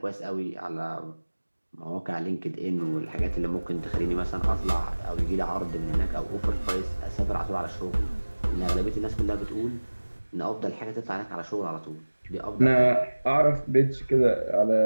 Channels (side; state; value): both; inverted; correlation -1.00